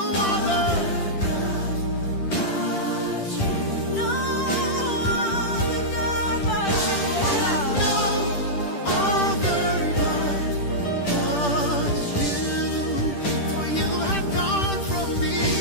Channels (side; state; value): right; late; 10 ms